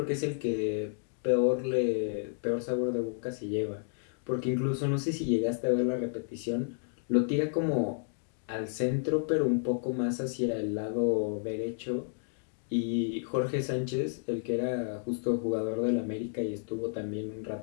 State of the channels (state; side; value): silent; right; digital silence